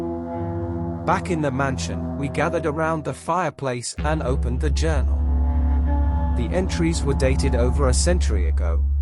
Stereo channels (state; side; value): identical; both; correlation 1.00